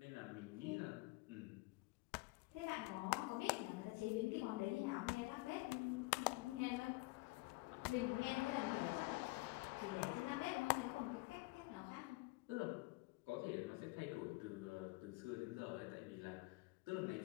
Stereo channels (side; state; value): right; quieter; 23.4 dB